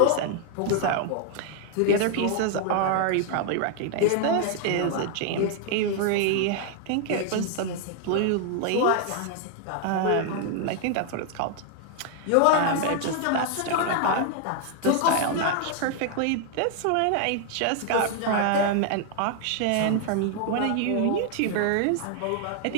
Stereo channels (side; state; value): both; different; correlation 0.00